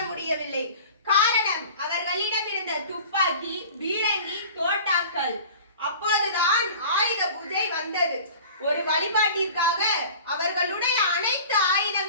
முடியவில்லை. காரணம், அவர்களிடம் இருந்த துப்பாக்கி, பீரங்கி, தோட்டாக்கள். அப்போதுதான் ஆயுத பூஜை வந்தது. ஒரு வழிபாட்டிற்காக அவர்களுடைய அனைத்து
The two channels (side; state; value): both; inverted; correlation -0.42